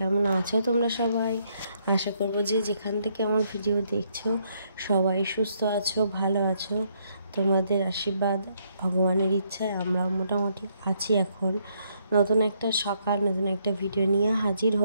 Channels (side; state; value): both; inverted; correlation -0.72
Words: আছো তোমরা সবাই? আশা করবো যে যেখান থেকে আমার ভিডিও দেখছো সবাই সুস্থ আছো, ভালো আছো। তোমাদের আশীর্বাদ, ভগবানের ইচ্ছায় আমরাও মোটামুটি আছি। এখন নতুন একটা সকাল, নতুন একটা ভিডিও নিয়ে হাজির